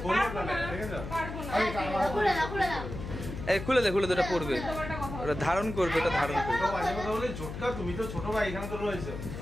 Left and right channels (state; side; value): noise; left; hum, 8 dB below the sound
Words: এই খুলে দে, খুলে দে, ওটা পড়বে, ওটা ধারণ করবে, ওটা ধারণ করবে। তুমি তো ছোট ভাই, এখানে তো রয়েছে।